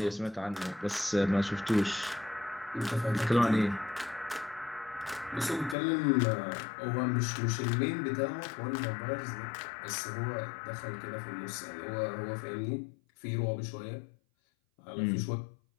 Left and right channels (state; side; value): drops out; right; at 5.8 s